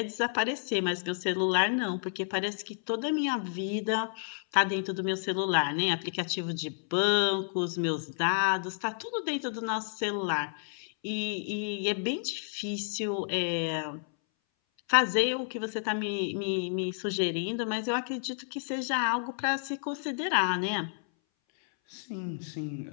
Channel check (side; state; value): right; silent; 57 dB below the other